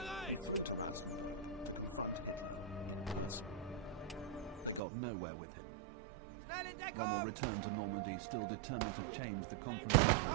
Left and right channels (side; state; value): left; drops out; at 4.8 s